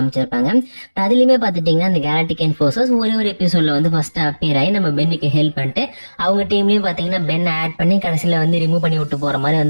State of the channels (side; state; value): both; inverted; correlation -1.00